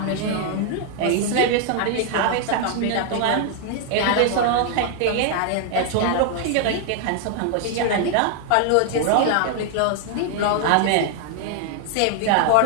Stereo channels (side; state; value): both; different; correlation 0.00